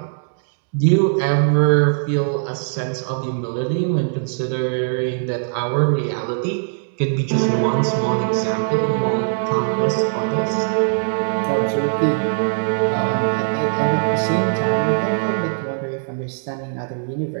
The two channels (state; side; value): silent; left; 65 dB below the other